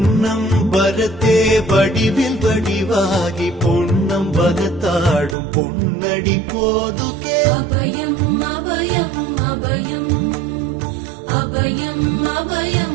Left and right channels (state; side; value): drops out; left; at 5.4 s